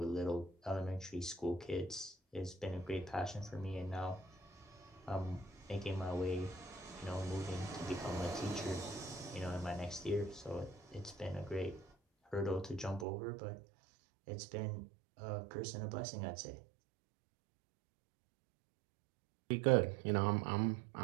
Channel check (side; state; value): left; drops out; at 13.1 s